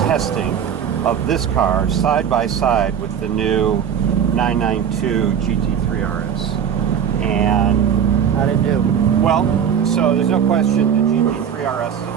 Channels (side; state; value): left; quieter; 8.2 dB